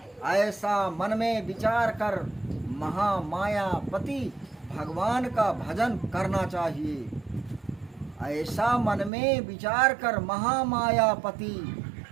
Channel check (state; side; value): drops out; left; at 9.1 s